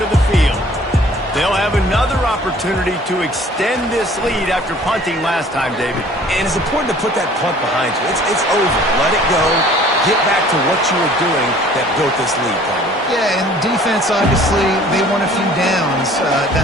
the field. They'll have another opportunity to extend this lead after punting last time, David. And it's important to put that punt behind you. It's over. Let it go. Get back to what you were doing that built this lead, Palmer. Yeah, and defense, obviously, they won a few downs that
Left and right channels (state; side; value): normal; both; correlation 0.52